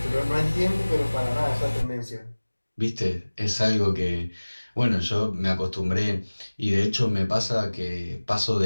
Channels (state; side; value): inverted; both; correlation -1.00